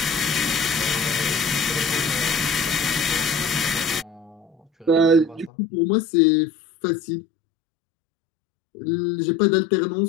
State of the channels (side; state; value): right; drops out; at 5.5 s